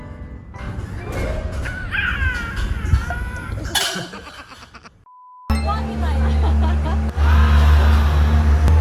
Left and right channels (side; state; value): both; identical; correlation 1.00